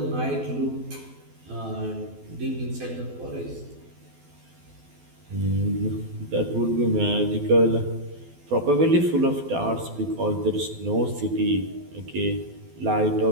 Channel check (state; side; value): late; left; 12 ms